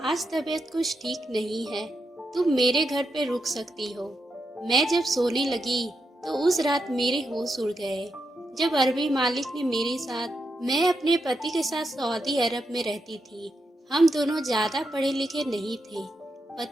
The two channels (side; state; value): both; normal; correlation 0.84